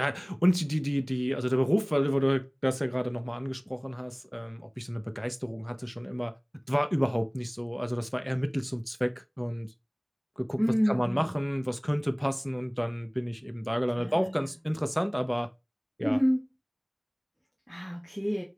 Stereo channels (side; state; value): both; identical; correlation 1.00